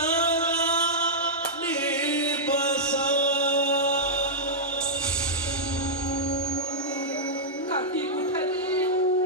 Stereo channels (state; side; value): normal; both; correlation -0.09